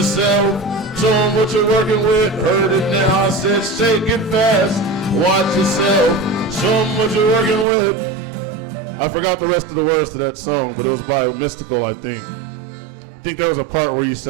Show 'em what you're working with. Heard it now, I said shake it fast. Watch yourself. Show 'em what you're working with. I forgot the rest of the words to that song, but it was by Mystical, I think. I think there was a part where you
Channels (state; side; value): drops out; left; at 7.7 s